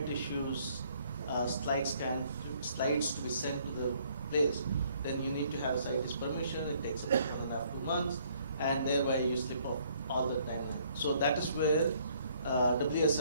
tissues slides to be sent to the place, then you need to have scientist permission. It takes 1.5 to 2 months, and thereby you slip off all the time. So that is where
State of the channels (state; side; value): inverted; both; correlation -0.64